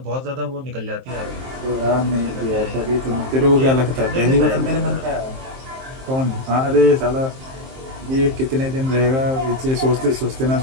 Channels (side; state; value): left; late; 23 ms